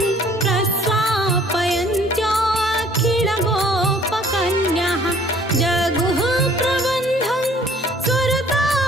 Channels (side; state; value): both; normal; correlation 0.56